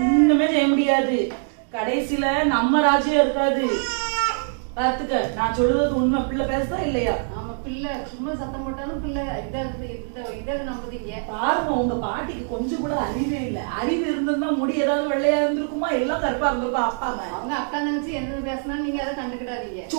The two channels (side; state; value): left; silent; digital silence